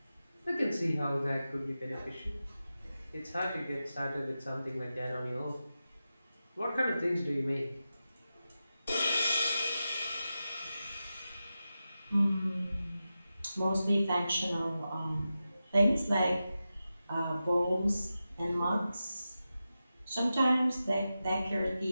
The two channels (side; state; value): both; inverted; correlation -0.92